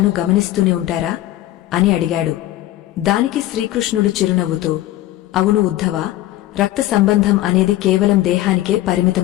గమనిస్తూనే ఉంటారా అని అడిగాడు. దానికి శ్రీకృష్ణుడు చిరునవ్వుతో, అవును ఉద్ధవా, రక్త సంబంధం అనేది కేవలం దేహానికే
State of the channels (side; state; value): right; quieter; 15.1 dB